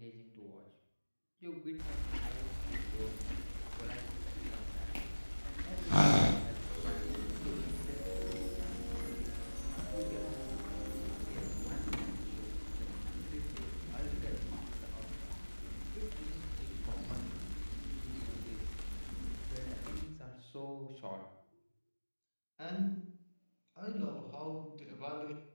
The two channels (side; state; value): both; inverted; correlation -1.00